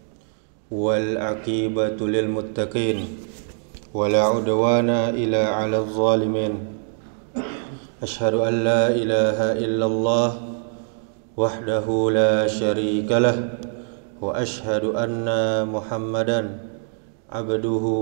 wal aqibatu lil muttaqin, wala udwana illa 'alal zalimin. Ashhadu an la ilaha illallah wahdahu la syarika lah, wa ashhadu anna Muhammadan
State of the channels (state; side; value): silent; left; digital silence